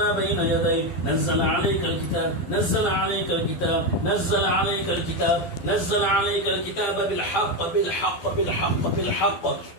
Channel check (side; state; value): right; late; 12 ms